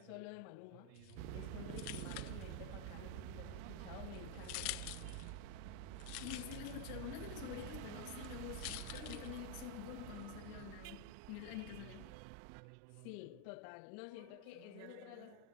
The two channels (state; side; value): different; both; correlation 0.01